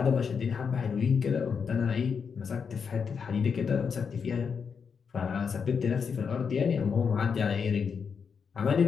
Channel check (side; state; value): right; quieter; 6.2 dB